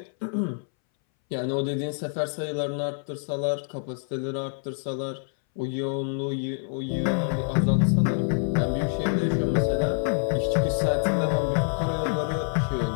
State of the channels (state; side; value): silent; right; 60 dB below the other